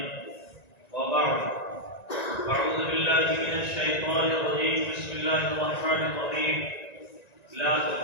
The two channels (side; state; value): right; late; 1.9 ms